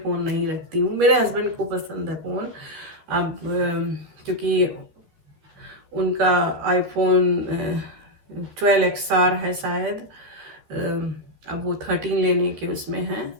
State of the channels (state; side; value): late; left; 13 ms